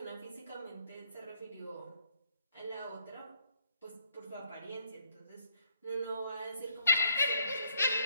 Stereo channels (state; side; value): inverted; both; correlation -0.68